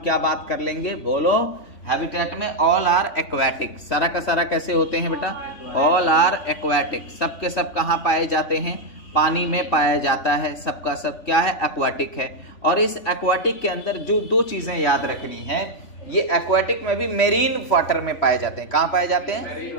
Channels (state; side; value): late; right; 3.5 ms